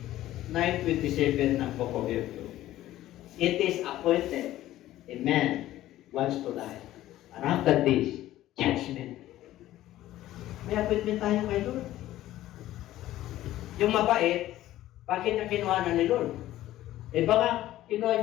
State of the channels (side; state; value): right; quieter; 14.5 dB